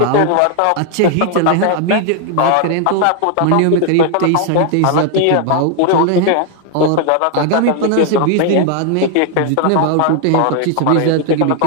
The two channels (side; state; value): both; different; correlation 0.00